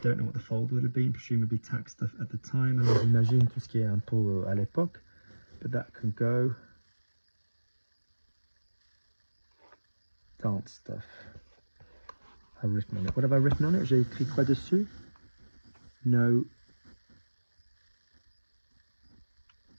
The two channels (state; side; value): inverted; both; correlation -1.00